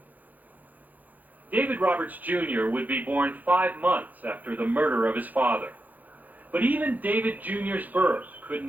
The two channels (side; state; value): left; late; 0.085 ms